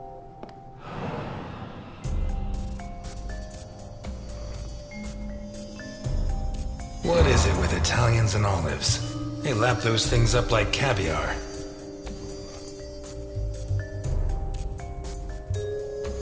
What is it with Italians and olives? They lap those things up like caviar.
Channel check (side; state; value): both; identical; correlation 1.00